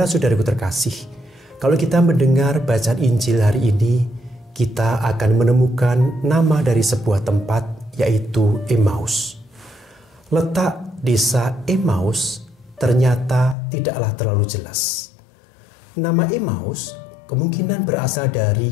terkasih, kalau kita mendengar bacaan Injil hari ini, kita akan menemukan nama dari sebuah tempat, yaitu Emmaus. Letak desa Emmaus ternyata tidaklah terlalu jelas. Nama Emmaus kemungkinan berasal dari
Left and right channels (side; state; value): right; drops out; at 13.6 s